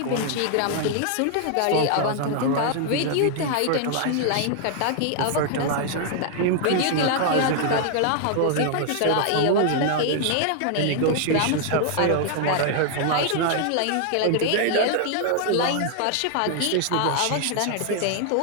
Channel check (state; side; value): different; both; correlation 0.00